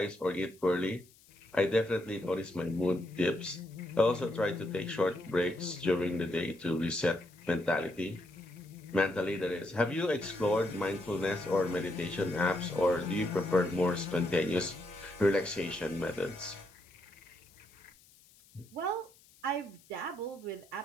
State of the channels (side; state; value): left; noise; hiss, 27 dB below the sound